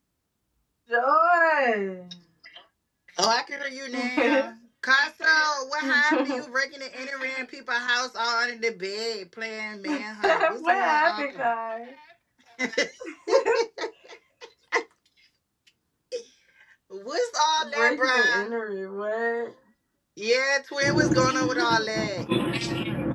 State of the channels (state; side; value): identical; both; correlation 1.00